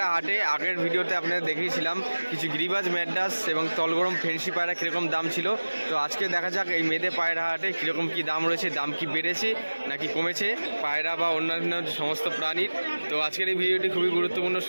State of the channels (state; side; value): inverted; both; correlation -1.00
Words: হাটে আগের ভিডিওতে আপনাদের দেখিয়েছিলাম কিছু গিরিবাজ ম্যাড্রাস এবং তলগরম ফেন্সি পায়রা কীরকম দাম ছিল। তো আজকে দেখা যাক এই মেদে পায়রা হাটে কীরকম কী দাম রয়েছে, দাম কি বেড়েছে নাকি কমেছে পায়রা বা অন্যান্য সমস্ত প্রাণীর। তো আজকের এই ভিডিওটি খুবই গুরুত্বপূর্ণ,